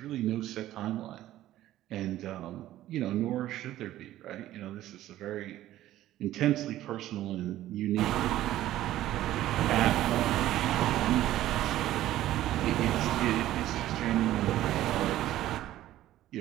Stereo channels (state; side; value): quieter; left; 14.1 dB